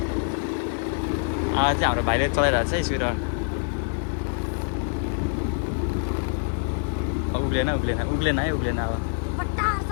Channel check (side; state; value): right; silent; digital silence